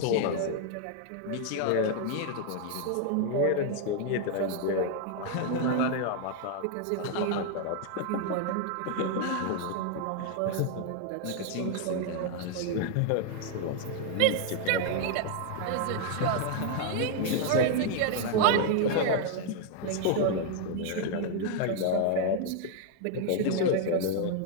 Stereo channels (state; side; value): different; both; correlation 0.00